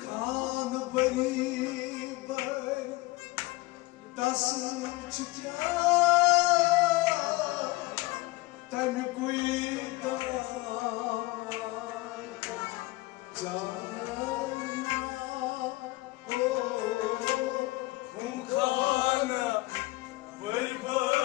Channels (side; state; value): right; quieter; 21.3 dB